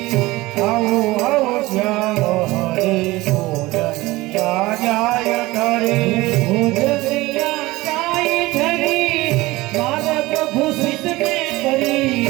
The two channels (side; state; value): left; quieter; 20.0 dB